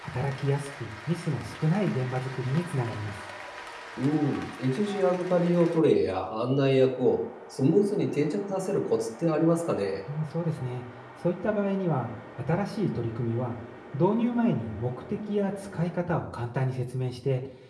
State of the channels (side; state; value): both; identical; correlation 1.00